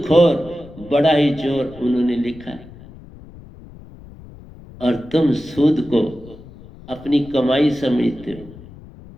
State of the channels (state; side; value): noise; left; rumble, 19 dB below the sound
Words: बड़ा ही चोर उन्होंने लिखा है, और तुम सूद को अपनी कमाई समझते हो।